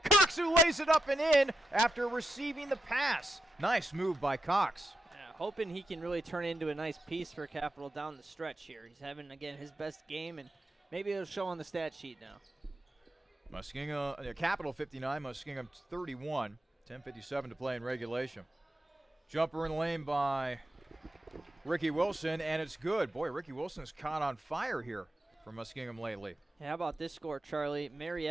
who lays it up and in after receiving the pass. Nice move by Cox. Yeah, hoping he can really turn into a nice piece for Capital down the stretch here. He's having, again, his best game, and maybe it'll show on the stat sheet now. Muskingum, Capital 59, Muskingum 31. 10:57 to play in regulation. Jumper in the lane by Ricky Wilson, and it's good. Boy, Ricky Wilson's caught on fire here for Muskingum lately. Yeah, how about this score, Charlie?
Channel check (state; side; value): normal; both; correlation 0.86